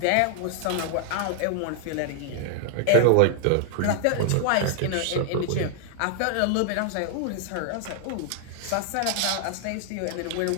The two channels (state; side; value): different; both; correlation 0.00